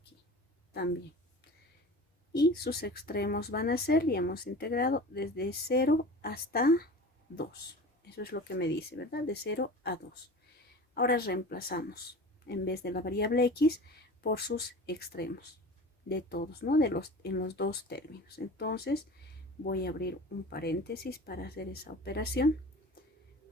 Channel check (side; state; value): both; normal; correlation 0.37